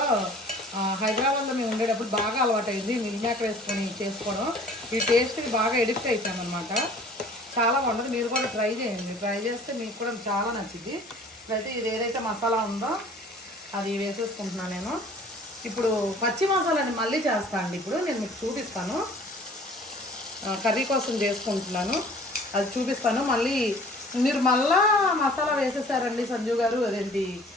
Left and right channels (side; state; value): both; normal; correlation 0.50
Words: హైదరాబాద్లో మేము ఉండేటప్పుడు బాగా అలవాటైంది మిల్ మేకర్ వేసుకొని చేసుకోవడం. ఈ టేస్ట్కి బాగా ఎడిక్ట్ అయిపోయామన్నమాట, చాలా బాగుంటుంది. మీరు కూడా ట్రై చేయండి, ట్రై చేస్తే మీకు కూడా చాలా నచ్చింది. ఇప్పుడైతే ఇది ఏదైతే మసాలా ఉందో అది వేసేసుకుంటున్నాను నేను. ఇప్పుడు పచ్చి మసాలాని మళ్ళీ చేస్తాను అండి, ఇప్పుడు నేను మీకు చూపిస్తాను. కర్రీ కోసం చేసుకుంటున్నాను, అది చూపిస్తాను. మళ్ళీ మీరు మళ్ళా మసాలా వేసేసారండి సంజు గారు, అదేంటి